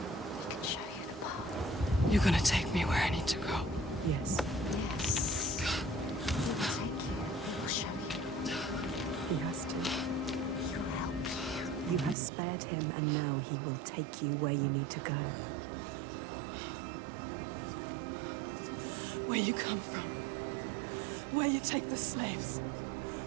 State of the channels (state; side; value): drops out; left; at 12.2 s